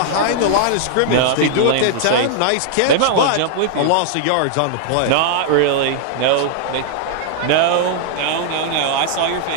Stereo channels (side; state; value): both; different; correlation 0.00